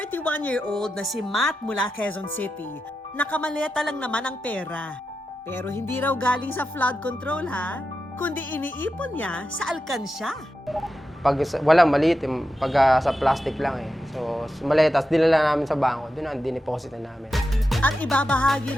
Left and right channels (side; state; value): both; normal; correlation 0.89